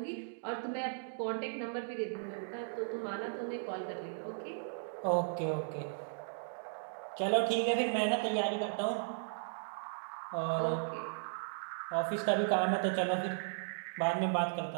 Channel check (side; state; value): left; silent; digital silence